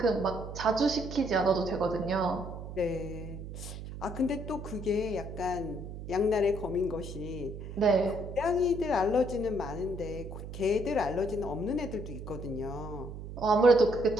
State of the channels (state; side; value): noise; right; hum, 10 dB below the sound